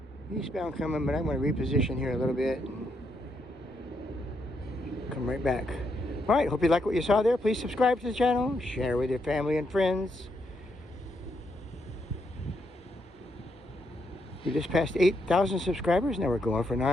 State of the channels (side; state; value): both; normal; correlation 0.78